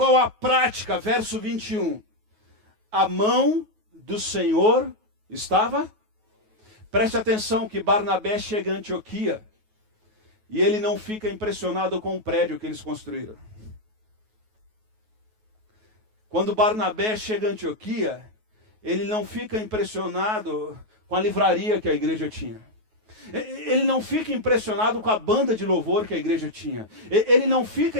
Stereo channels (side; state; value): left; late; 9.3 ms